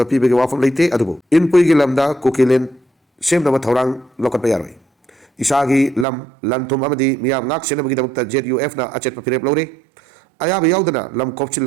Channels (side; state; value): left; drops out; at 6.1 s